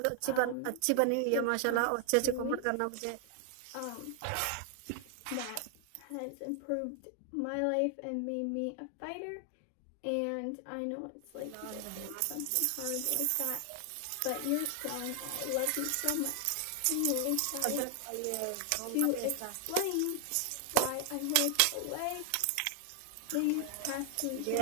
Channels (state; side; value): different; both; correlation 0.00